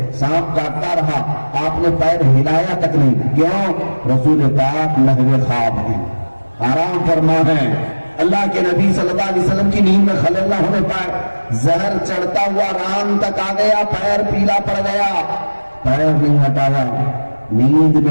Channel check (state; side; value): inverted; both; correlation -1.00